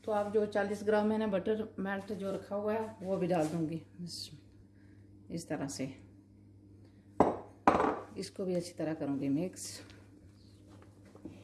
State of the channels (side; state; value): both; identical; correlation 1.00